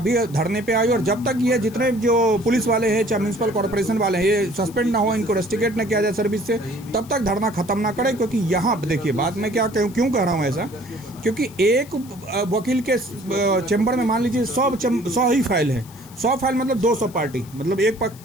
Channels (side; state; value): left; noise; hiss, 22 dB below the sound